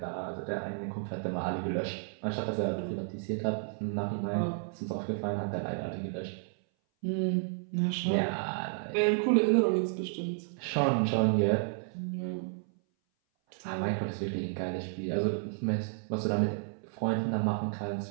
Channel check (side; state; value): left; silent; 57 dB below the other